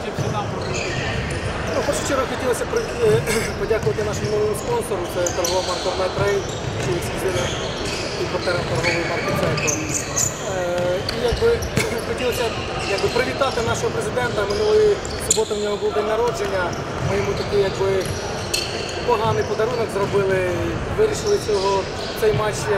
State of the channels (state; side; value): identical; both; correlation 1.00